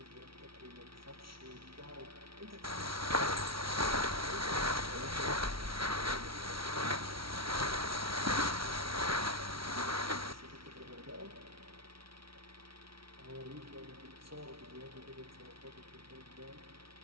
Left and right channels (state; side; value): late; left; 0.75 ms